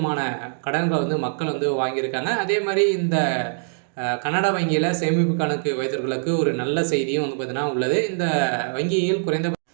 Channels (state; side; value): silent; left; digital silence